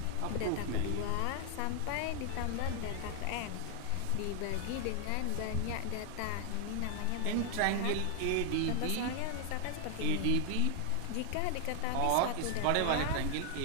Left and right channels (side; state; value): both; different; correlation 0.00